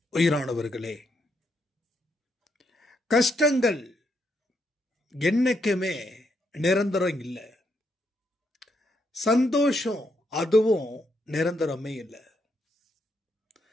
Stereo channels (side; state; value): both; normal; correlation 0.77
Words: உயிரானவர்களே, கஷ்டங்கள் என்னைக்குமே நிரந்தரம் இல்லை, சந்தோஷம் அதுவும் நிரந்தரமே இல்லை.